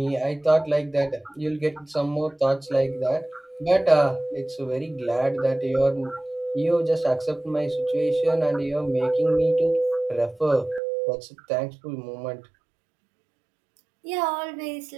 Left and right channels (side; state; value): left; drops out; at 10.8 s